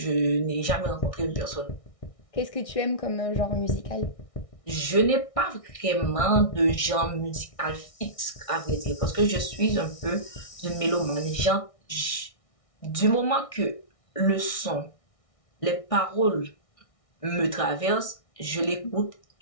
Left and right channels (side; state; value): right; late; 1.6 ms